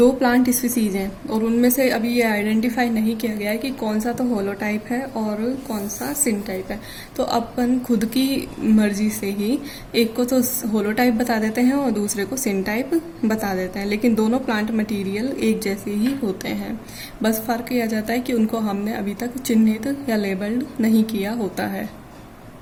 प्लांट स्पीसीज हैं और उनमें से अभी ये आइडेंटिफाई नहीं किया गया है कि कौन सा तो होलोटाइप है और कौन सा सिनटाइप है, तो अपन खुद की मर्जी से ही एक को तो होलोटाइप बता देते हैं और दूसरे को सिनटाइप बता देते हैं, लेकिन दोनों प्लांट मटेरियल एक जैसे ही होते हैं। बस फर्क यह आ जाता है कि उनको हमने अभी तक चिन्हित या लेबल्ड नहीं किया होता है।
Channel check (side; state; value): both; identical; correlation 1.00